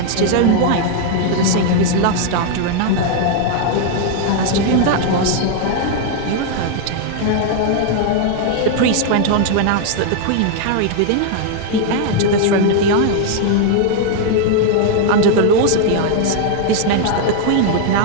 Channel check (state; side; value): different; both; correlation 0.00